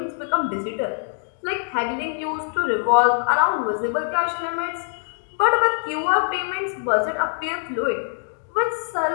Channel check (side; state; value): right; silent; digital silence